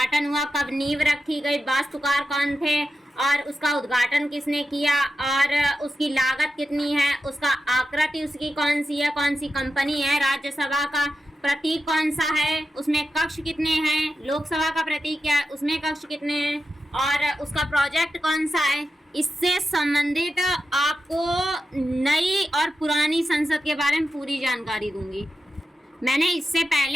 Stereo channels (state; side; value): normal; both; correlation 0.90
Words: हुआ, कब नींव रखी गई, वास्तुकार कौन थे और उसका उद्घाटन किसने किया और उसकी लागत कितनी है, उसका आकृति उसकी कौन सी है, कौन सी कंपनी है, राज्यसभा का प्रतीक कौन सा है, उसमें कक्ष कितने हैं, लोकसभा का प्रतीक क्या है, उसमें कक्ष कितने हैं और उसका प्रोजेक्ट कौन सा है। इससे संबंधित आपको नई और पुरानी संसद के बारे में पूरी जानकारी दूंगी। मैंने इससे